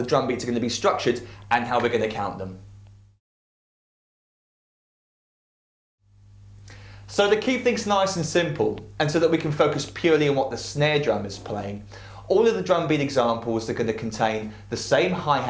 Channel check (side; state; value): both; identical; correlation 1.00